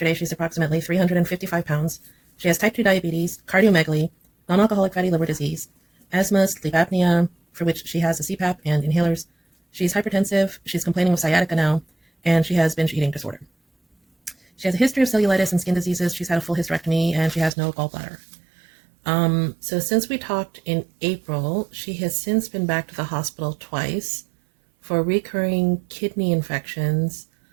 she's approximately 355 pounds. She has type 2 diabetes, cardiomegaly, non alcoholic fatty liver disease, asthma, sleep apnea, for which she has a CPAP and inhalers. She's hypertensive, she's complaining of sciatica now, and she has binge eating disorder. She has a history of cellulitis and skin diseases. She's had a full hysterectomy, and she has no gallbladder. So since we talked in April, she has since been back to the hospital twice for recurring kidney infections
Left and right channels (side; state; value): left; drops out; at 17.5 s